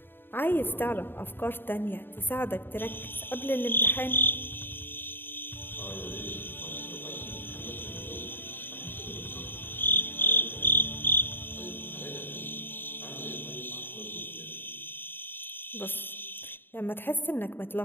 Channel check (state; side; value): late; right; 0.098 ms